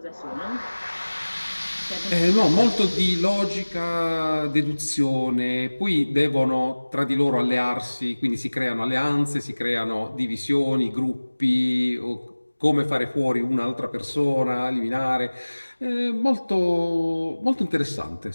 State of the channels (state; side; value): inverted; both; correlation -1.00